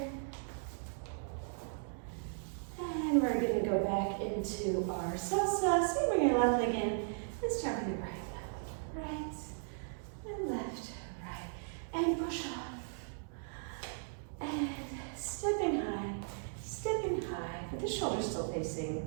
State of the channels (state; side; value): silent; left; digital silence